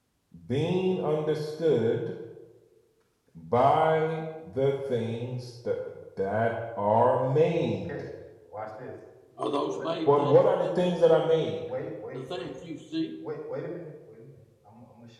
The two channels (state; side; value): identical; both; correlation 1.00